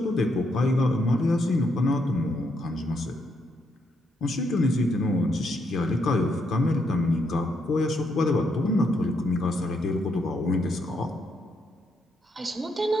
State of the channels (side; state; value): both; normal; correlation 0.77